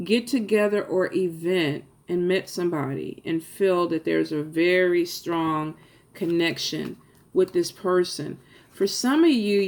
get-together or event and met somebody and feel that there's a very strong connection with this person. For some of you,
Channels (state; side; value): identical; both; correlation 1.00